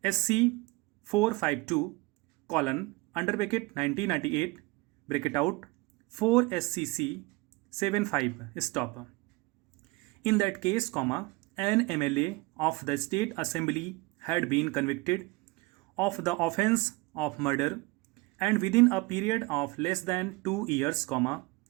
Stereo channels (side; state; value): left; quieter; 23.6 dB